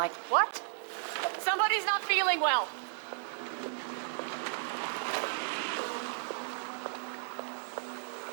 What? Somebody's not feeling well.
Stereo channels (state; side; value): silent; left; digital silence